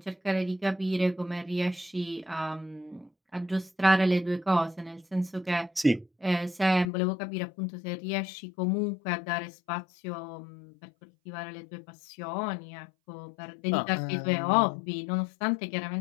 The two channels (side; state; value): right; drops out; at 6.9 s